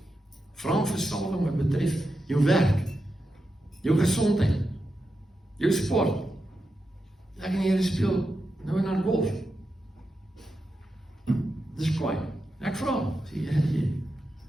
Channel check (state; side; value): normal; both; correlation 0.88